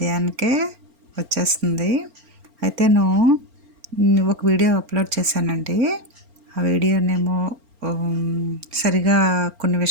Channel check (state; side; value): late; left; 4.4 ms